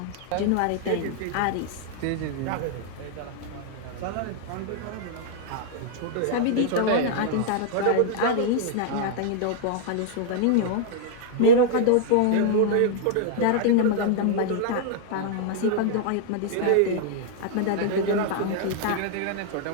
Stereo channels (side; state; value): both; different; correlation -0.01